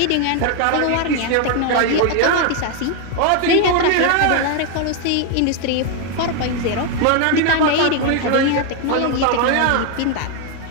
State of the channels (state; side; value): different; both; correlation 0.00